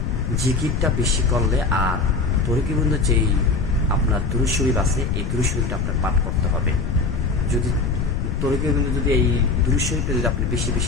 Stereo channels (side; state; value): left; noise; rumble, 1 dB below the sound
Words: জিকিরটা বেশি করলে, আর তরিগোবিন্দ যেই আপনার দুরূদ শরীফ আছে, এই দুরূদ শরীফটা আপনার পাঠ করতে হবে। যদি তরিগোবিন্দ যদি এই দুরূদ শরীফটা যদি আপনি বেশি